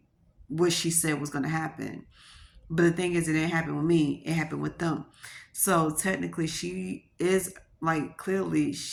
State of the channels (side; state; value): both; identical; correlation 1.00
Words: what she said was going to happen. But the thing is, it didn't happen with me. It happened with them. So technically, she is like, clearly